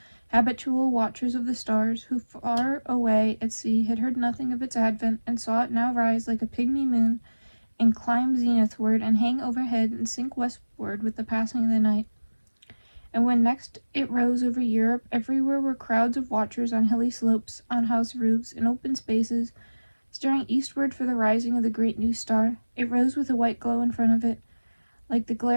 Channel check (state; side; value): inverted; both; correlation -1.00